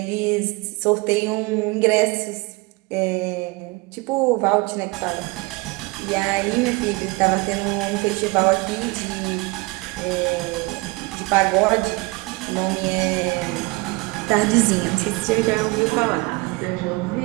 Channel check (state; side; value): quieter; left; 25.5 dB